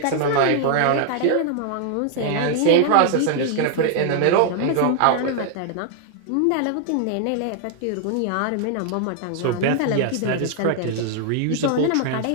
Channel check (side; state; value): both; different; correlation 0.00